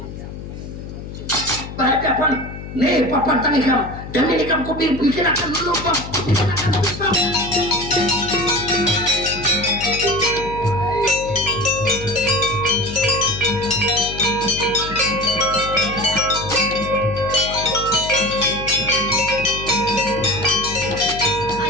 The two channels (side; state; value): left; noise; hum, 11 dB below the sound